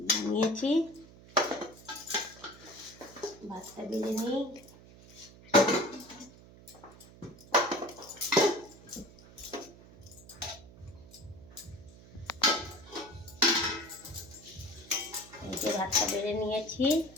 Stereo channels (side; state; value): right; noise; hum, 21 dB below the sound